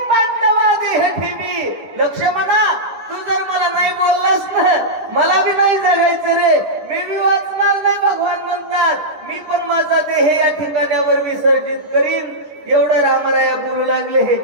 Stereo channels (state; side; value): late; left; 10 ms